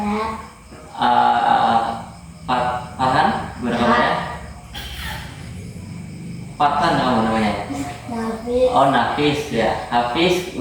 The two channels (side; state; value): both; identical; correlation 1.00